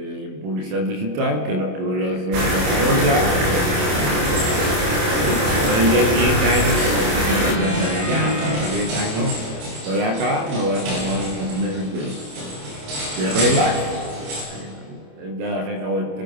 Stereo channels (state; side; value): late; left; 27 ms